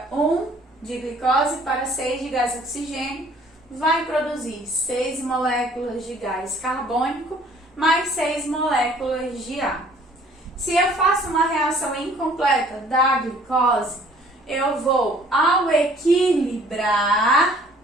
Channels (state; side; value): normal; both; correlation 0.56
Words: 1 de glicose para 6 de gás oxigênio, vai produzir 6 moléculas de gás carbônico mais 6 moléculas de água. Se eu faço uma reação incompleta da glicose, eu vou, ao equilibrar,